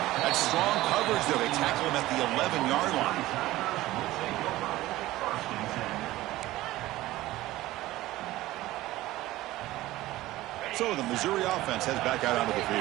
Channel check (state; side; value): quieter; left; 16.8 dB